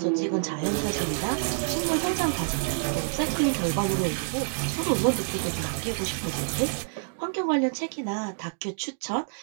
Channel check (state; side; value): silent; left; digital silence